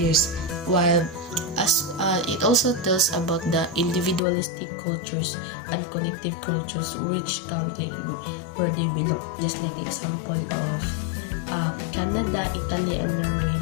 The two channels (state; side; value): drops out; right; at 4.2 s